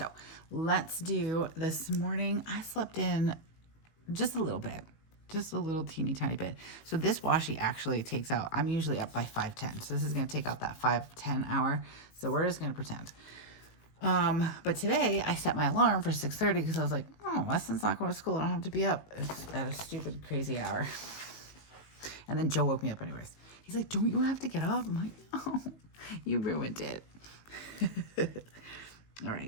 let's do this morning. I slept in just a little bit. Just a little teeny tiny bit. So this washi actually takes out, I'm usually up by 5:10. So this is going to take out that 5:10 hour. So we're just going to pretend. But today I set my alarm for 6:30 because I was like, oh, Weston's not going to school. I don't have to be up at a stupid, crazy hour. And then Joe woke me up anyways. He's like, don't you have to get up? I'm like, no, you ruined it. All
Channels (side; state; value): right; late; 19 ms